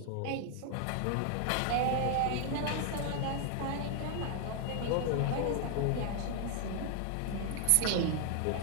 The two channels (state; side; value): different; both; correlation 0.00